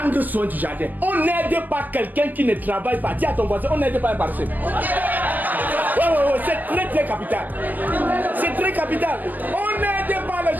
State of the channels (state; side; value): late; left; 0.084 ms